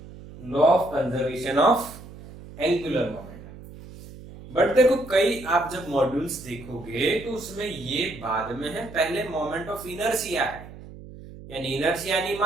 law of conservation of angular momentum. But देखो, कई आप जब मॉड्यूल्स देखोगे तो उसमें ये बाद में है, पहले मोमेंट ऑफ इनर्शिया है, यानी इनर्शिया यानी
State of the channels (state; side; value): noise; right; hum, 16 dB below the sound